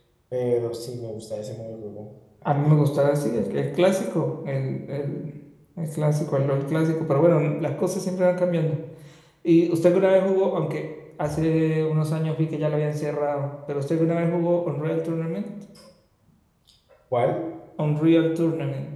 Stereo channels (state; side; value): identical; both; correlation 1.00